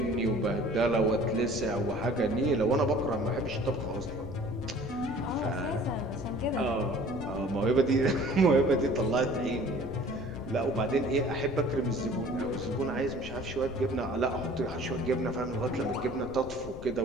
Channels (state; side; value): noise; left; rumble, 13 dB below the sound